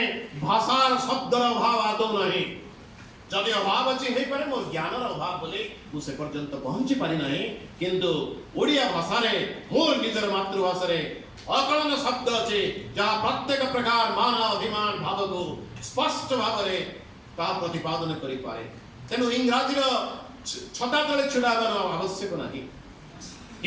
भाषार शब्दर अभाव आदौ नाही। जदि अभाव अछि हे पारे मोर ज्ञानर अभाव बोले मु से पर्यंत पहुंची पारि नाही, किंतु ओडिया भाषा रे मोर निजर मातृभाषा रे अकलन शब्द अछि जहा प्रत्येक प्रकार मान अभिमान भाव को स्पष्ट भाव रे ता प्रतिपादन करि पाए। तेनु इंग्रजी रो छता तळे छुडाबर आवश्यक नाही।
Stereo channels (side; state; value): both; identical; correlation 1.00